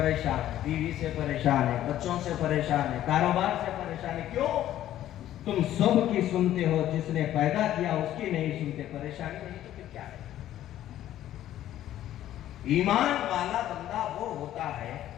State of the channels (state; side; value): quieter; right; 12.6 dB